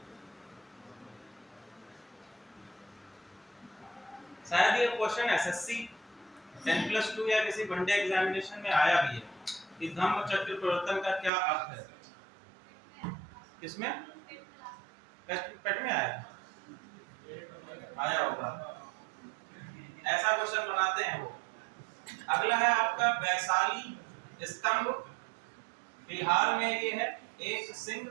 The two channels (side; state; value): left; drops out; at 11.3 s